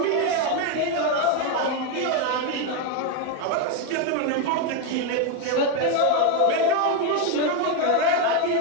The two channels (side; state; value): both; different; correlation 0.02